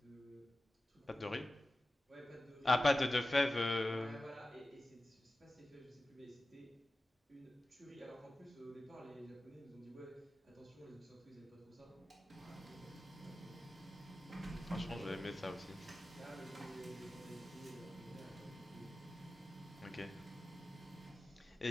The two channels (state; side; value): normal; both; correlation 0.95